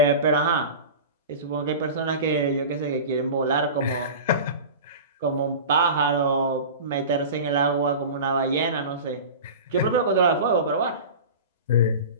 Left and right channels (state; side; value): inverted; both; correlation -0.32